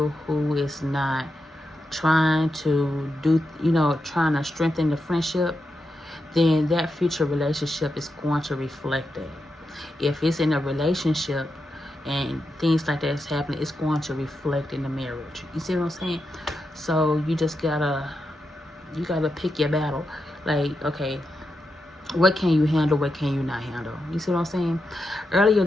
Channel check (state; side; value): normal; both; correlation 0.87